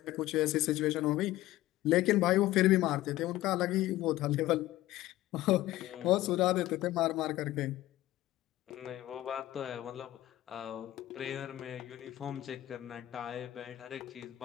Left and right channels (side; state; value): right; quieter; 15.7 dB